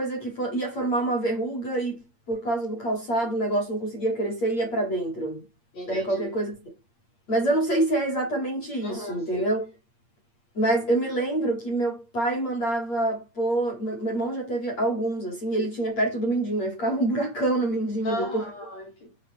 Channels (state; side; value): late; right; 8.6 ms